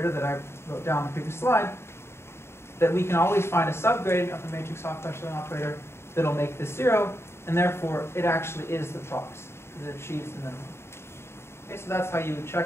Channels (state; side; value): late; right; 0.12 ms